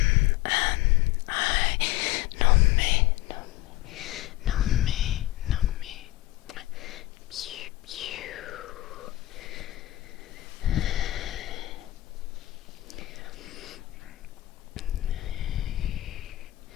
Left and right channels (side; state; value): right; quieter; 16.9 dB